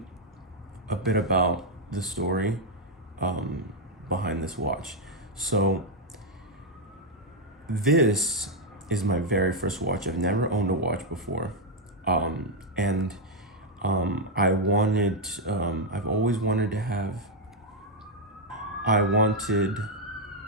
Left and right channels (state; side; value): normal; both; correlation 0.00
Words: a bit about the story behind this watch. So this is my very first watch. I've never owned a watch before, and I've always wanted to have. You